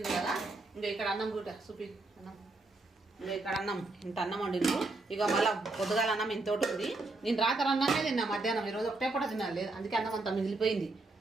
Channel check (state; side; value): quieter; left; 3.2 dB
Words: కదా ఇంకా ఇక్కడ అన్నం కూడా చూపి అన్నం ఇంకా ఇక్కడ అన్నం ఇంత అన్నం వండిండ్రు ఇక మళ్ళీ పొద్దుగాల అన్నం ఇంతోటి ఉంది నేను రాత్రి అన్నమే తిన్నా మధ్యాహ్నం ఈరోజు ఒకటే పూట తినాలి లేదు అందుకే అన్నం అంతా మిగిలిపోయింది